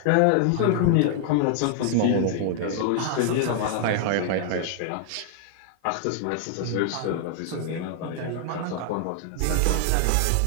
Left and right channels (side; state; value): both; different; correlation 0.00